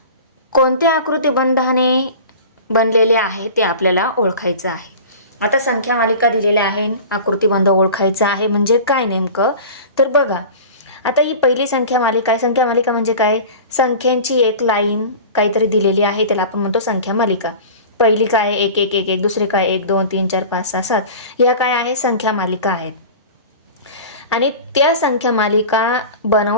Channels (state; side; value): inverted; both; correlation -0.37